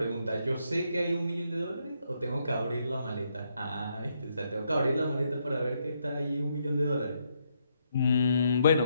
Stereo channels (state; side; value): inverted; both; correlation -0.77